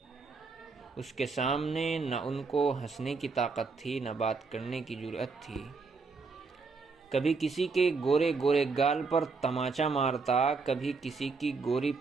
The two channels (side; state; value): left; quieter; 4.5 dB